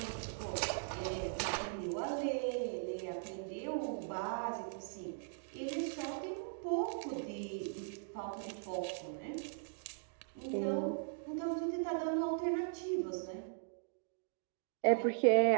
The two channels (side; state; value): left; silent; digital silence